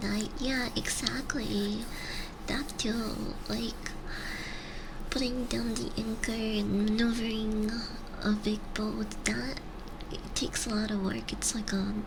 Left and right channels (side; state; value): both; identical; correlation 1.00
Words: die. Yeah, exactly. That too, like putting down the anchor and maneuvering a big boat, that it takes a lot of work. It's like an